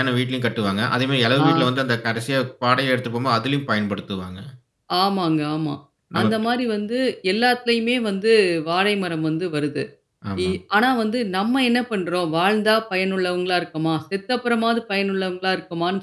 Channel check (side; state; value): both; identical; correlation 1.00